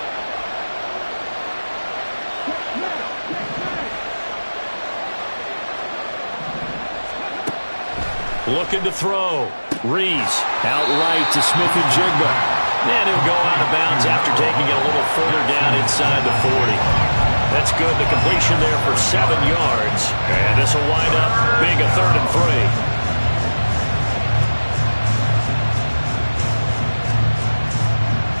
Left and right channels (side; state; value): both; inverted; correlation -1.00